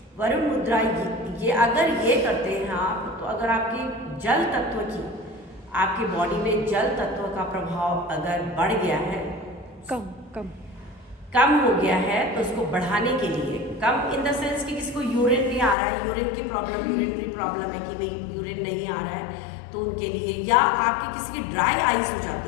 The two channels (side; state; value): right; drops out; at 15.8 s